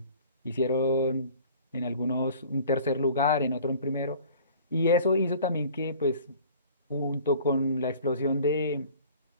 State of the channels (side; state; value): both; inverted; correlation -0.48